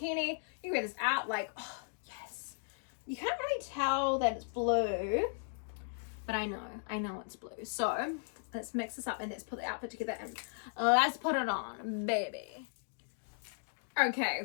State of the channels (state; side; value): silent; right; digital silence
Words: You can wear this out, like, oh, yes. You can't really tell that it's blue. But I know it's blue. So let's mix this up and let's put the outfit together and let's put it on, baby.